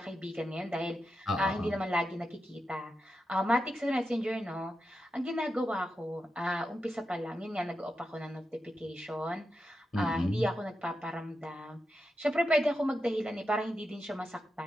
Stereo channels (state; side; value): normal; both; correlation 0.88